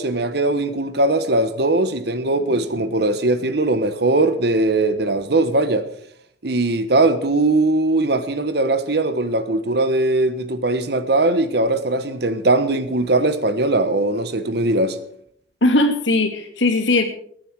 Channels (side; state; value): both; normal; correlation 0.08